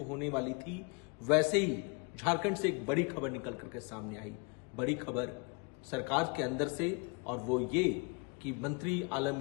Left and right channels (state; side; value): quieter; right; 31.8 dB